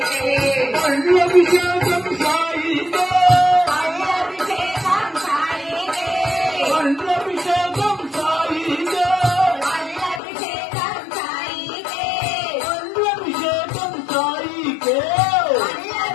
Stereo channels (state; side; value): drops out; right; at 10.2 s